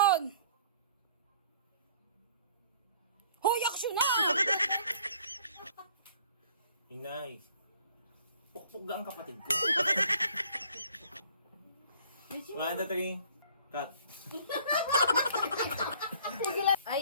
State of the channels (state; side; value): inverted; both; correlation -0.56